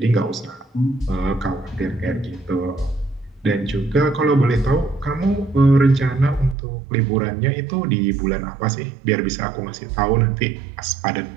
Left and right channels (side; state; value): left; drops out; at 6.6 s